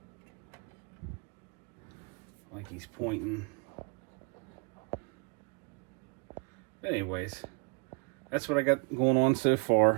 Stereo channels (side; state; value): left; quieter; 34.8 dB